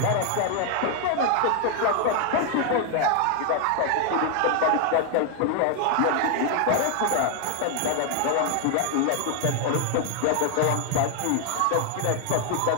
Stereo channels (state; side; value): different; both; correlation 0.00